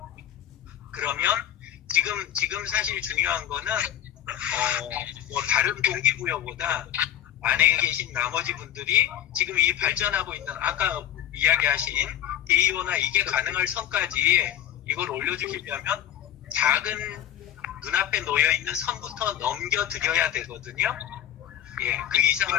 그러면 지금 사실 중요한 거는 다른 동기부여보다 안에 계신 나머지 분들이 지금 이 발전하고 있는 아까 이야기하신 데이오나 이게 가능할 선까지 이걸 올려주시려면 작은 눈앞에 놓여있는 선부터 넘겨드려야 되거든요. 예, 그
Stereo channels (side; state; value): right; quieter; 11.6 dB